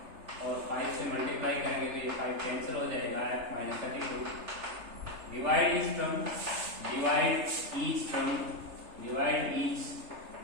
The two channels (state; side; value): late; left; 3.3 ms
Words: और 5 से मल्टीप्लाई करेंगे तो ये 5 कैंसिल हो जाएगा, F minus 32। Divide each term, divide each term, divide each